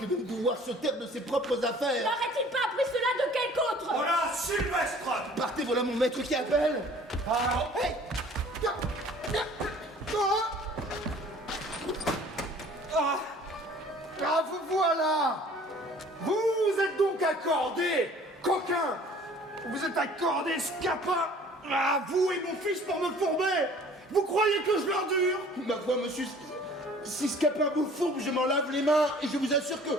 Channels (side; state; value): both; normal; correlation 0.51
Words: de pouvoir se taire de ses propres affaires. N'aurait-il pas appris cela de quelque autre? Voilà, Sylvestre! Partez, voilà mon maître qui appelle. Ah, Hey! Ah, vous voilà! Vous êtes donc accordé, coquin! Vous êtes accordé, scapin! Ah, vous et mon fils pour me fourber! Vous croyez que je l'endure? Ma foi, monsieur, si ce capin vous fourbe, je m'en lave les mains, et je vous assure que